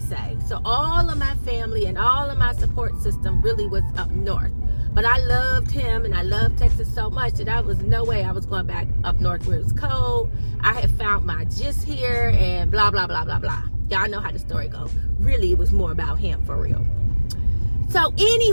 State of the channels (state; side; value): inverted; both; correlation -1.00